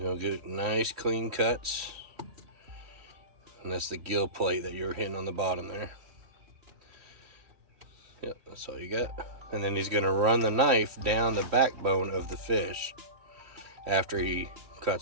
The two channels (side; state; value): left; late; 3.1 ms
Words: get nice clean cuts. And that's the gill plate that you were hitting on the bottom there. Yep, that's all you got. And then he's gonna run the knife down the backbone of the fish after he